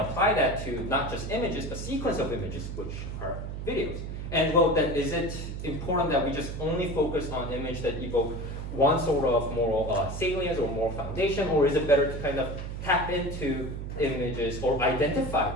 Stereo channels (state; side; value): noise; right; hum, 6 dB below the sound